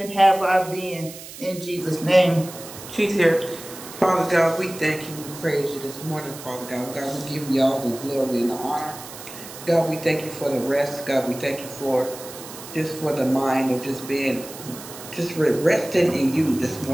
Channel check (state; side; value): noise; right; hiss, 14 dB below the sound